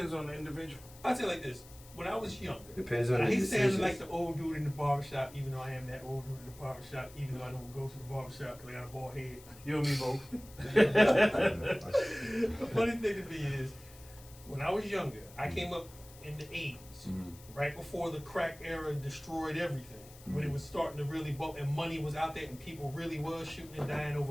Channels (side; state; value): left; noise; hiss, 21 dB below the sound